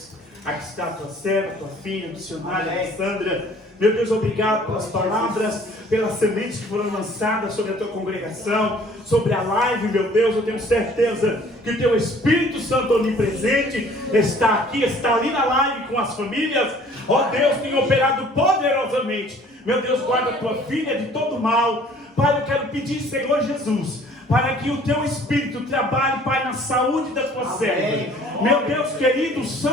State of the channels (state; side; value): normal; both; correlation 0.54